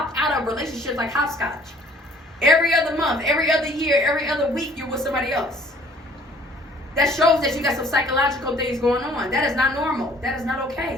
out of relationships like hopscotch. Every other month, every other year, every other week, you're with somebody else. That shows that you got some psychological things going on. That is not normal. That is not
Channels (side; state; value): both; normal; correlation 0.55